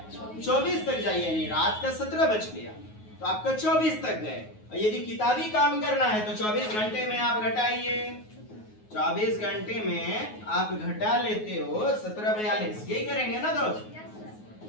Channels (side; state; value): right; late; 9.4 ms